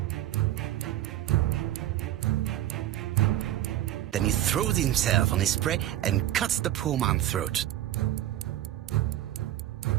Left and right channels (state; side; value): quieter; left; 13.4 dB